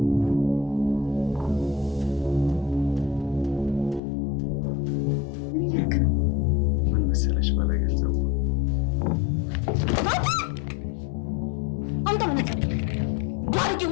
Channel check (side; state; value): right; drops out; at 4.0 s